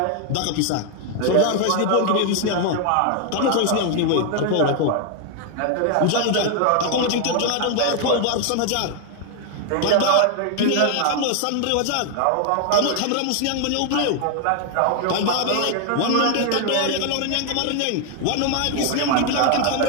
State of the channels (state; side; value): different; both; correlation 0.00